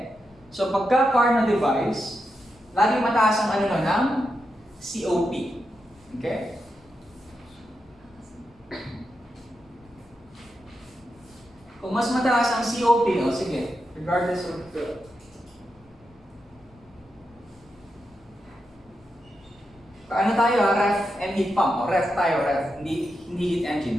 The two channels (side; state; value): left; noise; rumble, 30 dB below the sound